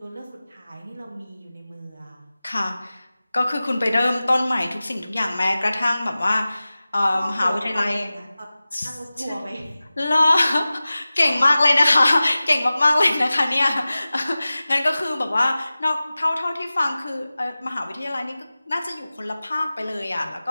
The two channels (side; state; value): both; inverted; correlation -0.97